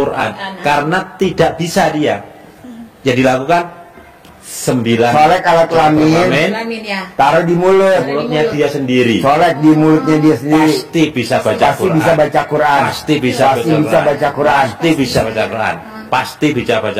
Karena tidak bisa dia. Jadi lakukan 9 Solek alat kelamin. Amin ya. Taruh di mulut. mulutnya dia sendiri. Solek di mulutnya dia sendiri. Pasti bisa baca Pasti Quran. bisa baca Quran. Pasti bisa Pasti bisa baca Quran. Pasti bisa baca Quran. Pasti bisa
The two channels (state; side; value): identical; both; correlation 1.00